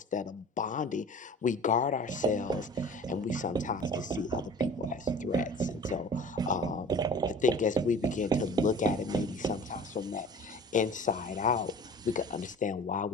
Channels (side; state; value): both; normal; correlation 0.43